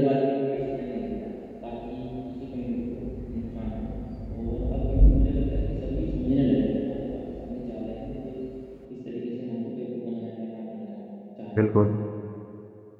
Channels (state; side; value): identical; both; correlation 1.00